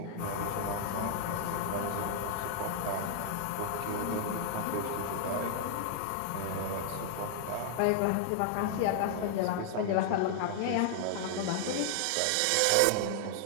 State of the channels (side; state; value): both; different; correlation 0.00